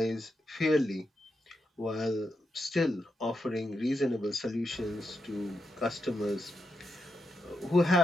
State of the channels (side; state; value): both; normal; correlation 0.85